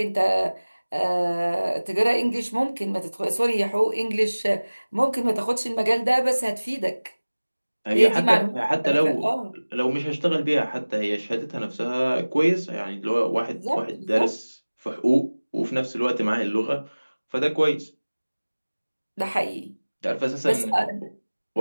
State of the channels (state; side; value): inverted; both; correlation -1.00